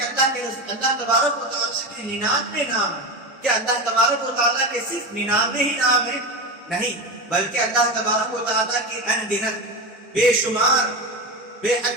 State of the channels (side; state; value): both; normal; correlation 0.20